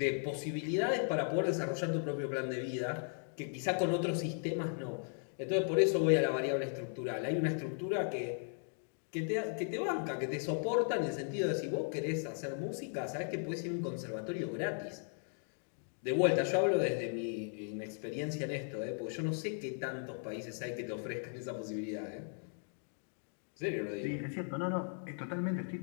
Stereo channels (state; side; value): silent; right; 53 dB below the other